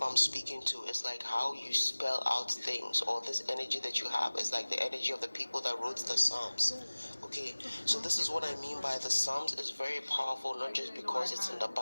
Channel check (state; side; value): inverted; both; correlation -1.00